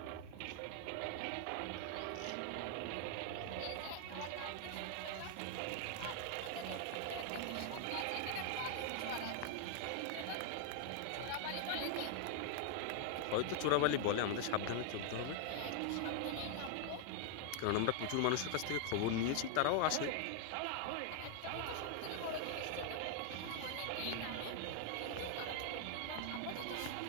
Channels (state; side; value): different; both; correlation 0.00